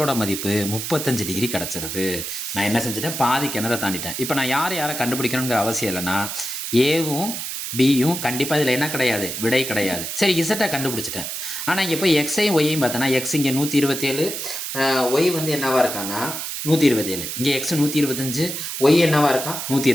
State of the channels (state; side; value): noise; right; hiss, 5 dB below the sound